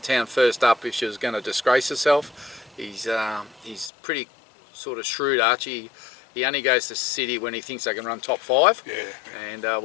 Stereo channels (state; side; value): drops out; right; at 3.9 s